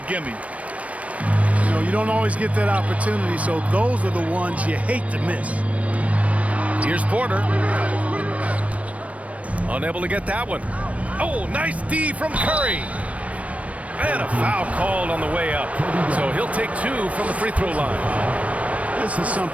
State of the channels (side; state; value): left; late; 0.065 ms